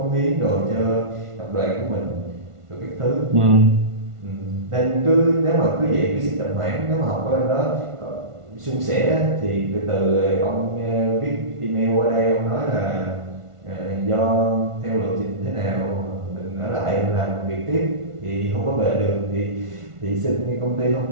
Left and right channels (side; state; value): left; late; 1.5 ms